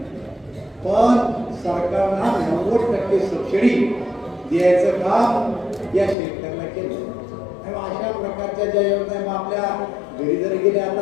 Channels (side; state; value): right; drops out; at 6.2 s